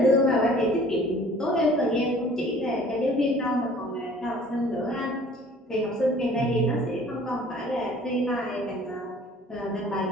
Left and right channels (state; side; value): normal; both; correlation 0.52